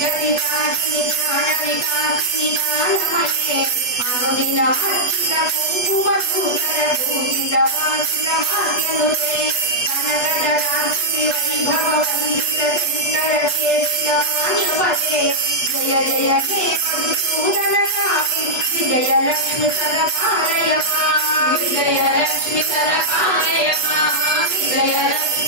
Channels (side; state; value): right; late; 8.0 ms